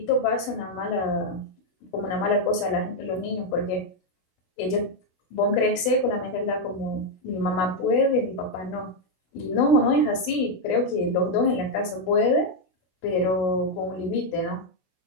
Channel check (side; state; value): right; late; 16 ms